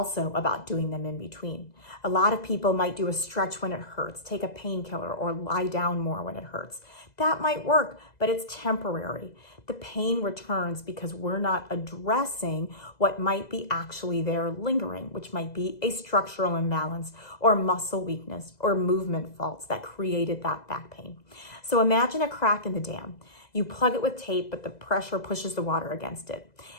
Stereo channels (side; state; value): right; late; 2.0 ms